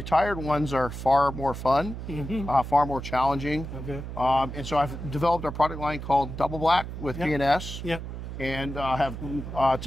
ones are far more fun, far more challenging. Okay. And so I've developed a product line called Double Black with P&S, and have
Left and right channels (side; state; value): right; noise; hum, 8 dB below the sound